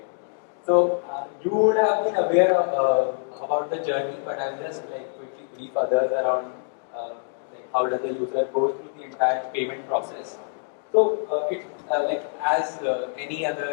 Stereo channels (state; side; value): silent; right; digital silence